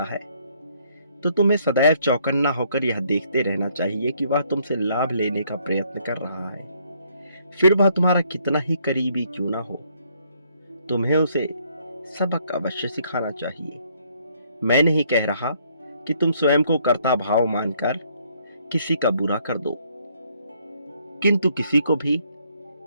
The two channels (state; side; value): inverted; both; correlation -0.67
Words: है तो तुम्हें सदैव चौकन्ना होकर यह देखते रहना चाहिए कि वह तुमसे लाभ लेने का प्रयत्न कर रहा है, फिर वह तुम्हारा कितना ही करीबी क्यों ना हो। तुम्हें उसे सबक अवश्य सिखाना चाहिए। मैं नहीं कह रहा कि तुम स्वयं को कर्ता भाव मानकर किसी का बुरा कर दो, किंतु किसी को भी